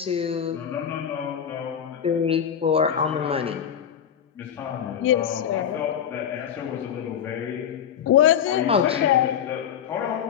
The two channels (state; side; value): quieter; right; 8.8 dB